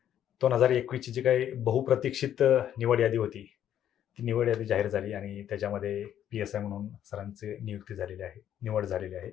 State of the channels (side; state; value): right; quieter; 10.5 dB